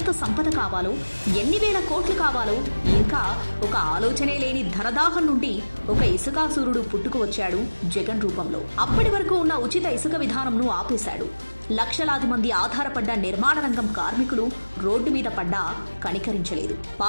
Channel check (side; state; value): both; inverted; correlation -1.00